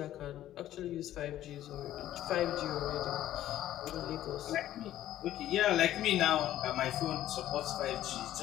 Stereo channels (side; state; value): right; quieter; 13.0 dB